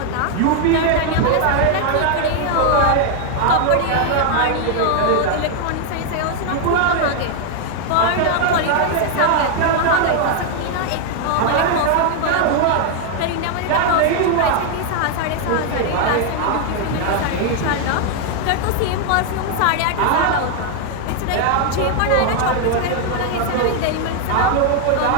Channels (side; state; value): both; different; correlation 0.00